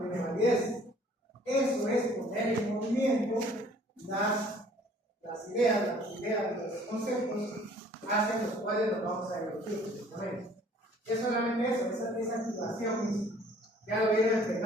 validez. Eso es poner en movimiento las ideas, los conceptos hacia los cuales nos vamos a dirigir. Es solamente eso, esa activación misma. ¿Ya lo vieron en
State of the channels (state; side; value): normal; both; correlation 0.55